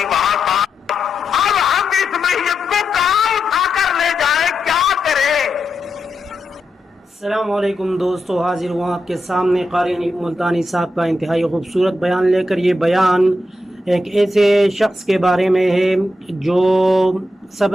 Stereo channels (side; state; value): both; normal; correlation 0.86